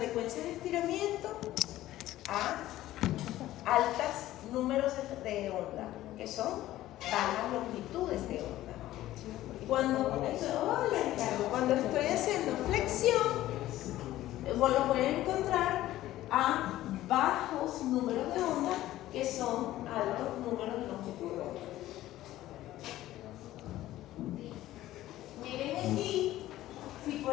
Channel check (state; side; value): quieter; right; 14.8 dB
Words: de estiramiento a altos números de onda, que son bajas longitudes de onda. Cuando estoy haciendo flexión, lo voy a encontrar a bajos números de onda que son altos números de longitud de onda. Miren aquí, si